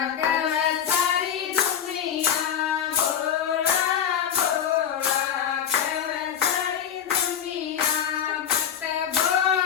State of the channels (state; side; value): quieter; right; 8.8 dB